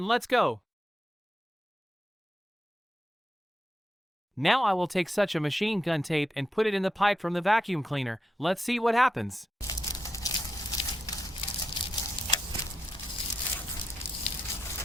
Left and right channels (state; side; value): normal; both; correlation 0.85